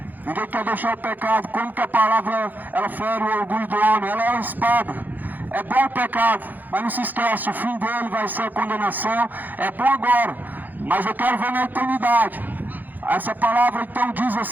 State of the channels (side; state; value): left; late; 0.085 ms